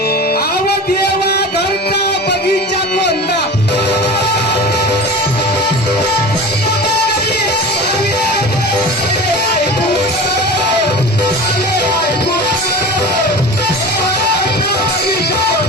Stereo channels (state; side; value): normal; both; correlation 0.34